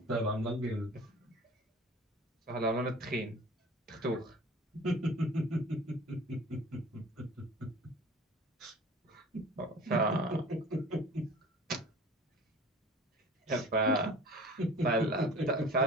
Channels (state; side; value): normal; both; correlation 0.42